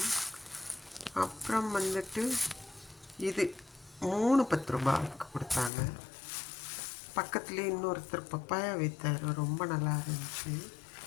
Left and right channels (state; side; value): drops out; right; at 5.7 s